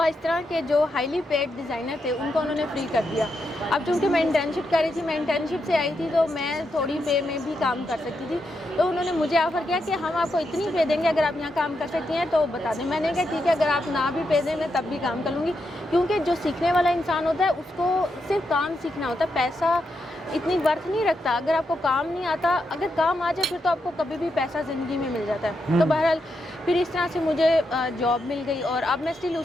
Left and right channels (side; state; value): both; normal; correlation 0.84